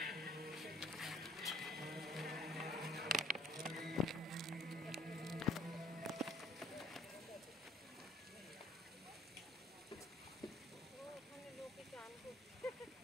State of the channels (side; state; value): both; normal; correlation 0.59